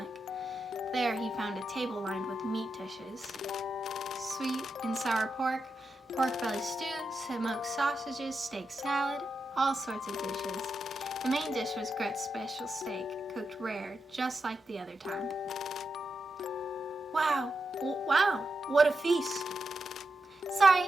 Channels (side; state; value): both; normal; correlation 0.87